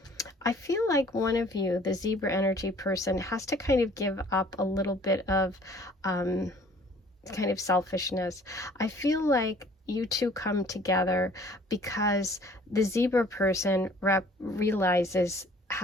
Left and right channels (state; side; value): normal; both; correlation 0.54